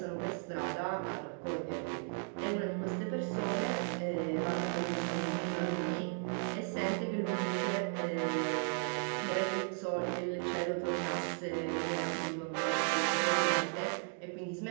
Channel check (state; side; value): silent; left; 54 dB below the other